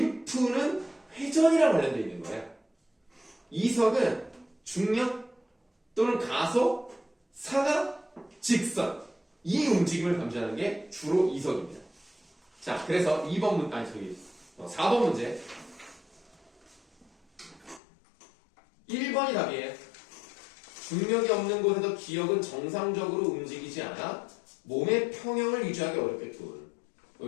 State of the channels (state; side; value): drops out; right; at 17.8 s